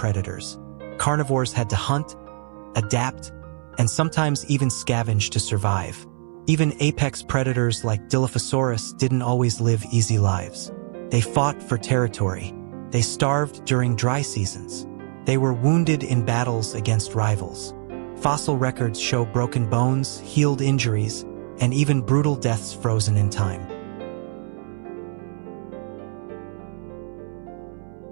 Carnivores had to hunt, adapt, and sometimes even scavenge to survive. Even apex predators like Dilophosaurus didn't always live easy lives. They fought for territory. They starved during dry seasons. They were wounded in battles against rivals. Fossil records show broken bones, healed injuries, and even brutal deaths frozen in time.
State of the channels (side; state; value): left; silent; 63 dB below the other